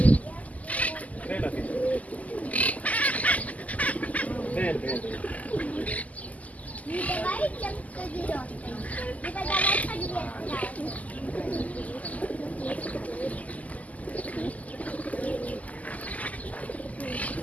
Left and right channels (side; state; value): right; late; 0.075 ms